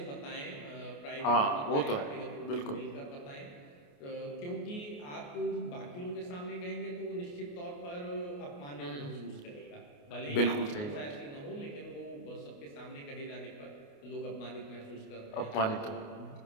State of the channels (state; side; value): late; right; 28 ms